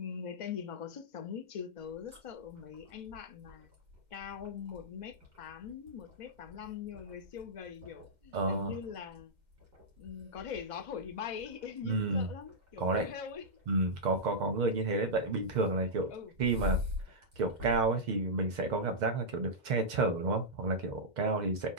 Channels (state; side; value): late; left; 2.1 ms